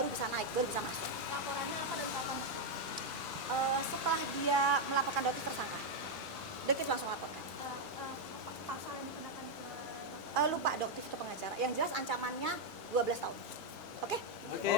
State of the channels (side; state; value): both; normal; correlation 0.01